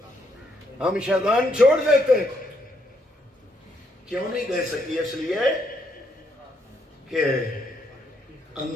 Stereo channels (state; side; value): normal; both; correlation 0.74